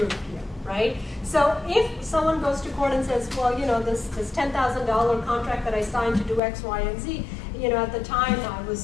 here, right? So if someone goes to court and says, well, this $10,000 contract that I signed to do X, Y, and Z, at the time I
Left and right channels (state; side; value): drops out; right; at 6.4 s